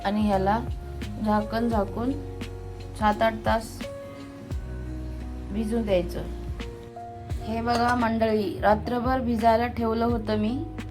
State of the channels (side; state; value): both; identical; correlation 1.00